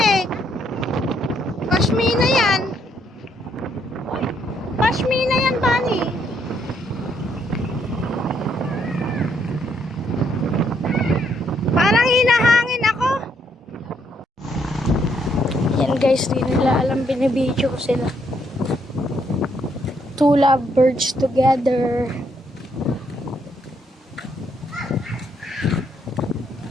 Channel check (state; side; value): normal; both; correlation 0.72